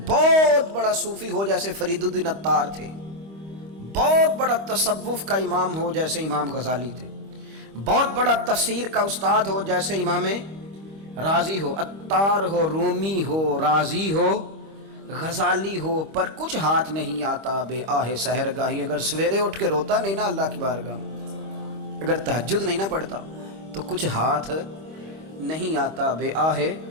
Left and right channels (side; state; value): left; late; 25 ms